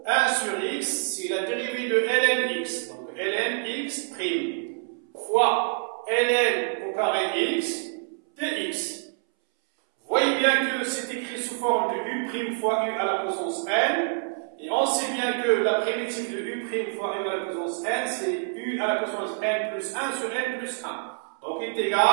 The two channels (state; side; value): silent; left; 61 dB below the other